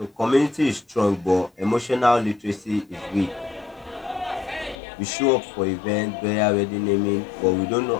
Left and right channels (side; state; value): right; drops out; at 4.8 s